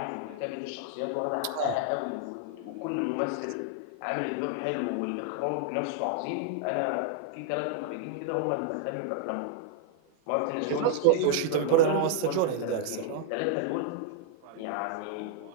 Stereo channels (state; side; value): different; both; correlation 0.00